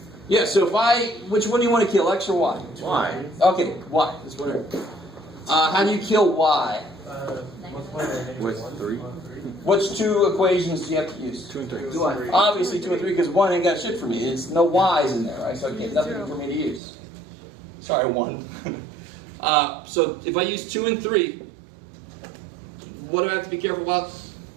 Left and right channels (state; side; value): drops out; left; at 16.8 s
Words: Yeah, so which one do you want to kill, X or Y? Y. Okay, Y. That's whatever. How do you kill Y? With 3. Which two equations do you have to use? 2 and 3. Obviously 2 and 3 because 1 ain't got shit for me. It's no Y's in there, right? So I get nothing for me to use. Sorry, 1. So if I use 2 and 3, what do I have to be careful about?